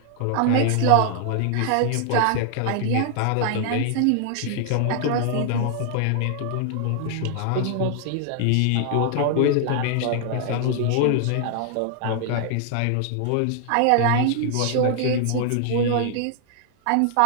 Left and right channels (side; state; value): both; different; correlation 0.00